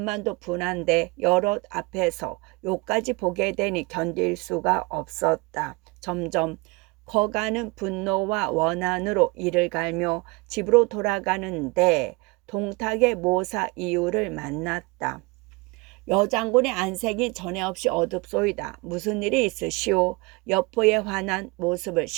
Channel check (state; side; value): quieter; left; 26.6 dB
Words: 분한데 여럿 앞에서 요까지 보게 되니 견딜 수가 없었다. 점점 커가는 분노와 원한으로 이를 갈며 집으로 돌아가는데 동탁의 모사 이유를 만났다. 여장군의 안색이 전에 없이 어둡소이다. 무슨 일이 있으시오? 여포의 환한 모습을